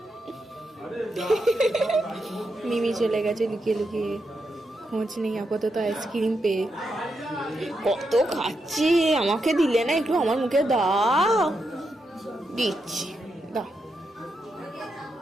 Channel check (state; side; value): normal; both; correlation 0.84